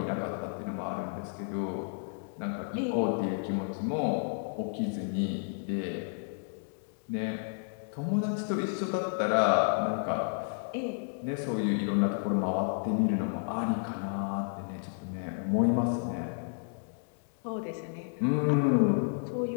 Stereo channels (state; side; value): silent; right; digital silence